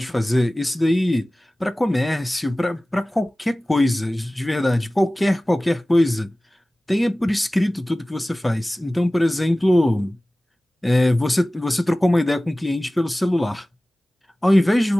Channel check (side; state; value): both; normal; correlation 0.97